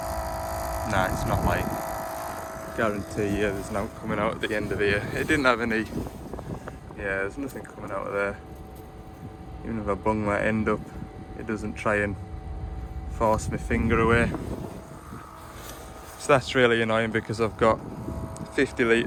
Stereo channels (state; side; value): identical; both; correlation 1.00